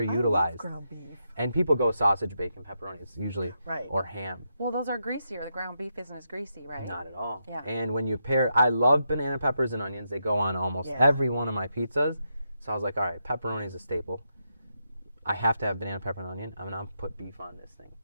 ground beef. and people go sausage, bacon, pepperoni. It's usually Right. or ham. Well, those are greasier. The ground beef isn't as greasy, right? Not at all. Yeah. And when you pair, I love banana peppers and onions. They go on almost Yeah. every one of my pizzas. So I was like, all right, pepperoni is a staple. I have to have banana, pepper, and onion. I'm going to put beef on this thing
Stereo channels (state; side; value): inverted; both; correlation -0.83